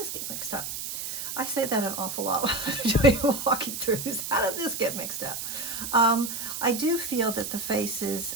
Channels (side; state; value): right; noise; hiss, 5 dB below the sound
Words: get mixed up? I say that an awful lot when I'm walking through. How did this get mixed up? I do feel that the